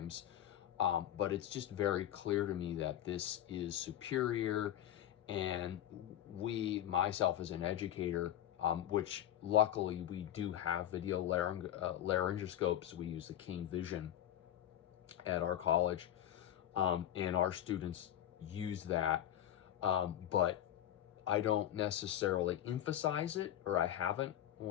but it's just very clear to me that this is superior, and myself as an educator, which luckily we do have video laryngoscopes. We use the King Vision at our college, and our students use that, but I don't necessarily emphasize it, or I haven't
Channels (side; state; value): right; quieter; 11.4 dB